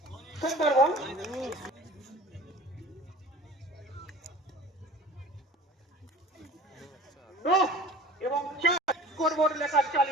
সুন্দর বল, এবং স্কোরবোর্ড লেখা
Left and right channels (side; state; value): both; normal; correlation 0.42